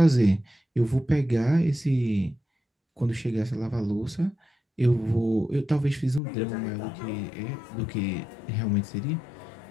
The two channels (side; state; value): right; drops out; at 6.2 s